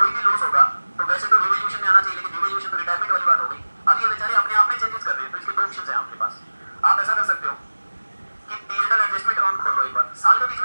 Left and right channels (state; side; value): inverted; both; correlation -1.00